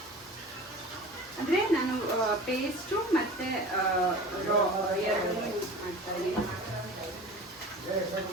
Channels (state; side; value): normal; both; correlation 0.38